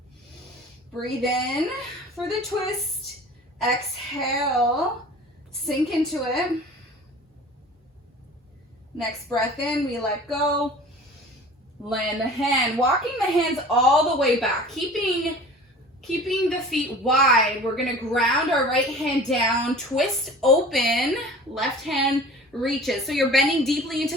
Breathe in for the twist. Exhale, sink into it. Next breath in, we let go. Land the hand. Walking the hands all the way back. Keeping the feet wide. We're going to ground our right hand down, twist open, left hand reaches. So you're bending deeply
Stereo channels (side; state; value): both; normal; correlation 0.42